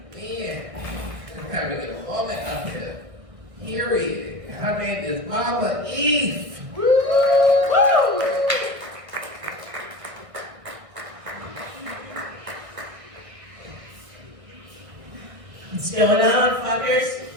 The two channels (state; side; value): late; left; 1.6 ms